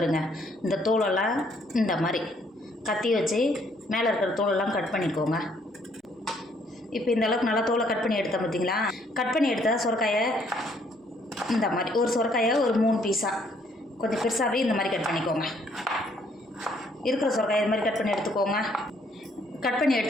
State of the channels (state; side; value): normal; both; correlation 0.67